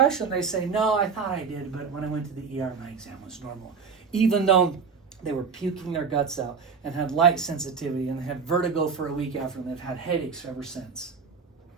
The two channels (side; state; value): left; quieter; 5.6 dB